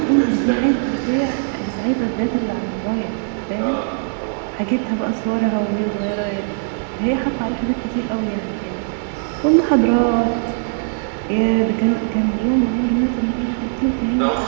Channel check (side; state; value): left; silent; digital silence